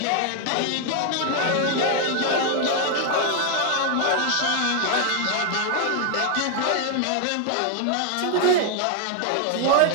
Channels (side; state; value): both; different; correlation 0.00